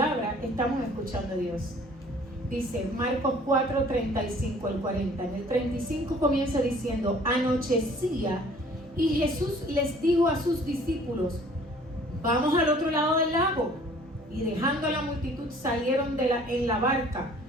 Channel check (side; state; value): both; normal; correlation 0.53